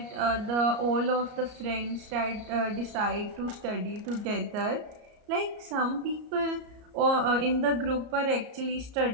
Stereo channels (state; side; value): late; left; 34 ms